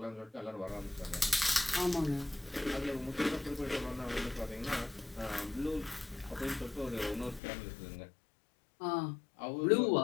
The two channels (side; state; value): right; drops out; at 7.4 s